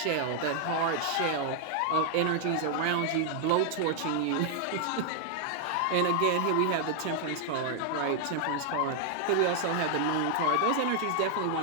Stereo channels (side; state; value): both; different; correlation 0.00